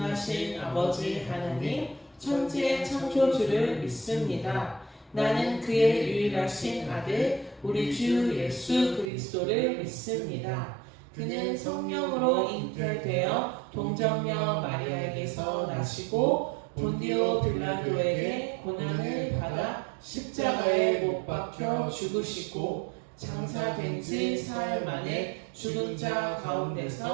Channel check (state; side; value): drops out; left; at 9.1 s